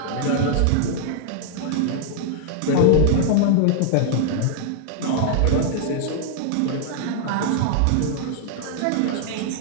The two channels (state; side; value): different; both; correlation -0.01